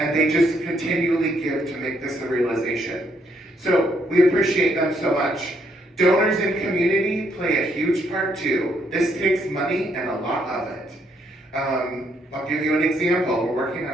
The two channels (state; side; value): normal; both; correlation 0.72